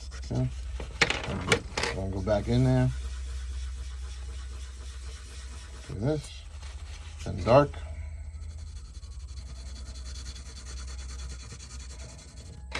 Okay. I'm going to go back in there. Do this. Then dark.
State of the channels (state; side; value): identical; both; correlation 1.00